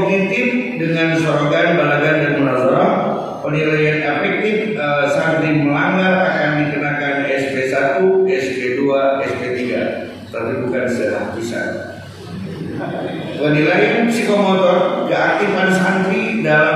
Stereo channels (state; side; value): identical; both; correlation 1.00